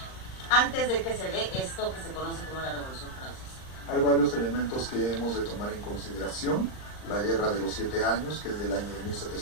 antes de que se dé esto que se conoce como la Revolución Francesa? Hay varios elementos que hemos de tomar en consideración. La Guerra de los 7 años, que es del año de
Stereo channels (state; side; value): late; right; 39 ms